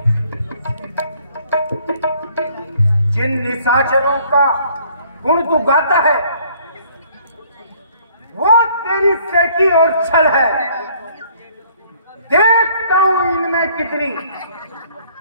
जिन निशाचरों का गुण तू गाता है वो तेरी सेकी और छल है। देखता हूं इनमें कितनी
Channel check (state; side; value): inverted; both; correlation -0.60